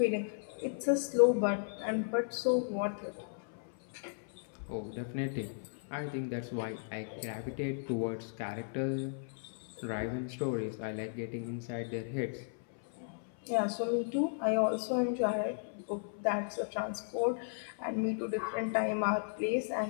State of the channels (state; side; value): silent; right; 54 dB below the other